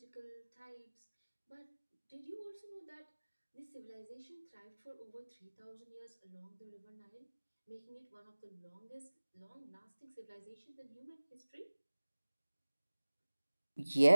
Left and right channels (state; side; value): inverted; both; correlation -1.00